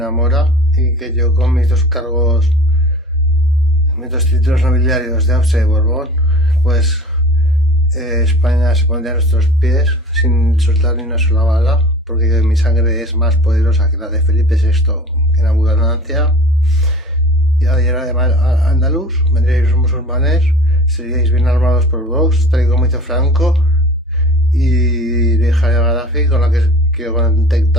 mora y que yo con mis dos cargos, mis dos títulos nobiliarios de Austrasia y Borbón, pues España se pondría a nuestros pies sin soltar ni una sola bala, porque mi sangre es más poderosa que la de Felipe VI en abundancia. Y además andaluz, vendríais los musulmanes, seríais bien armados por Vox, tal y como hizo Franco, y la hija de Gaddafi, con la que quiero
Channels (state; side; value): normal; both; correlation 0.42